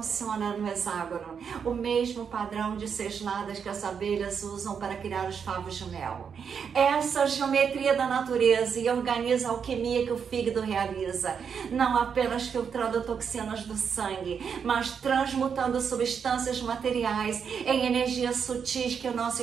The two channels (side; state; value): left; quieter; 6.8 dB